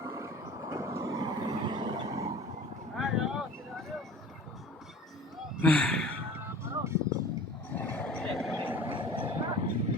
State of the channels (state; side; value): normal; both; correlation 0.41